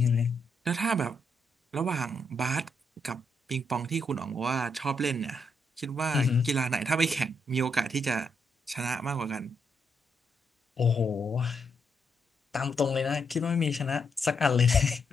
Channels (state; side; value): normal; both; correlation 0.78